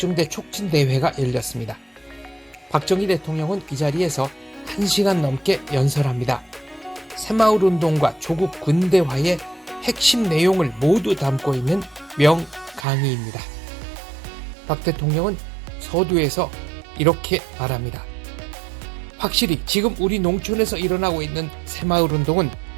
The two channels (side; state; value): left; drops out; at 12.9 s